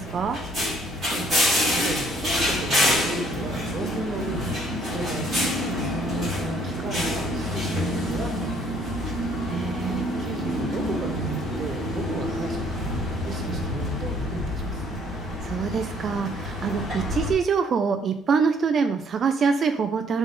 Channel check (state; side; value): normal; both; correlation 0.63